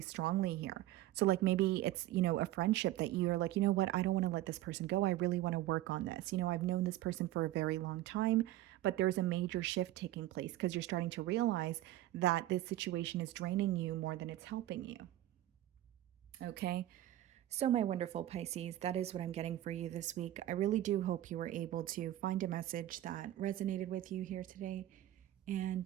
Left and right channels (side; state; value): left; quieter; 14.7 dB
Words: strongly here. So like maybe it's, a friendship that you're like, you know what, I don't want to let this person go. I really want to work on this. I've known this person for a very long time, but there's a major shift taking place because you're starting to realize that this situation is draining you more than it's helping you. Okay. So, my wonderful Pisces, that is what I'm getting for you this week. I really do hope you were able to find a message that resonated with you here today.